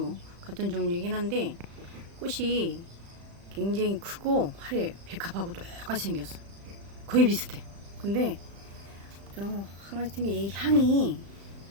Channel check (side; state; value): left; late; 35 ms